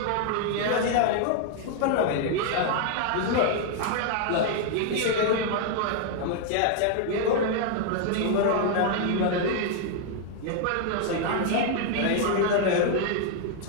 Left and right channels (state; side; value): different; both; correlation 0.00